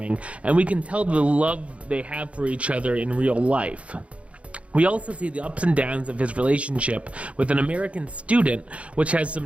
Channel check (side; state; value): left; late; 0.063 ms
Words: and we can tell the love they have for each other in real life. We also see the ups and downs of his relationship with an American student, which has